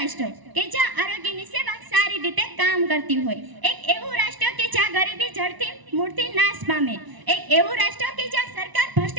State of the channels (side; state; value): left; late; 1.0 ms